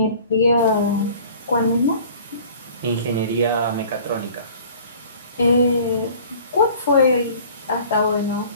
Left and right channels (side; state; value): both; inverted; correlation -0.48